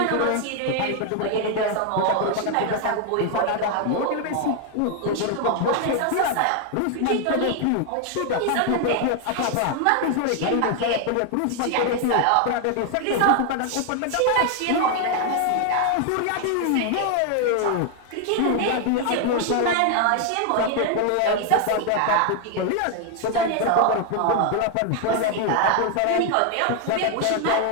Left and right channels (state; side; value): different; both; correlation 0.00